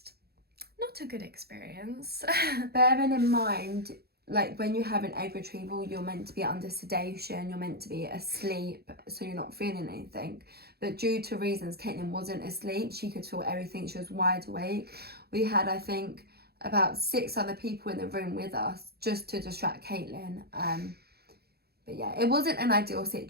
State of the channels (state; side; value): late; left; 0.46 ms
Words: not a good experience. Bearing in mind, like when you have an egg retrieval, you're meant to be under sedation, you're meant to be asleep, so you're not feeling anything. But due to reasons, Caitlin wasn't asleep. She could feel everything. She was wide awake. We had, I think, about 6 other people in the room with us just to distract Caitlin. But yeah, it wasn't an ideal